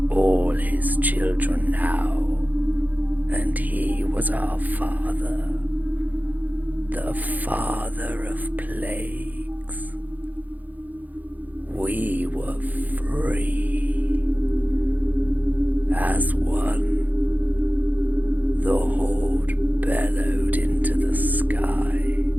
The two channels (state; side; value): late; left; 0.082 ms